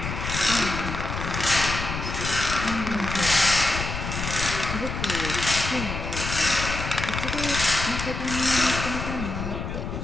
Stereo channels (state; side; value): noise; left; rumble, 5 dB below the sound